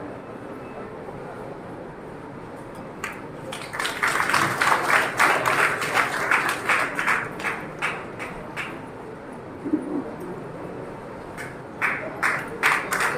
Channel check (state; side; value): identical; both; correlation 1.00